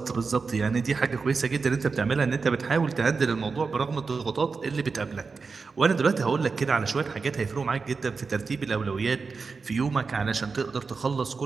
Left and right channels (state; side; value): quieter; left; 4.7 dB